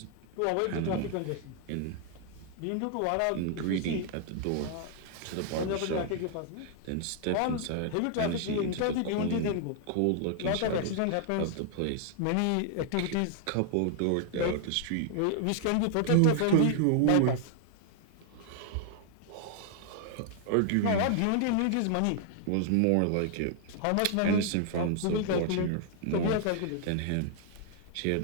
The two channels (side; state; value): both; different; correlation 0.00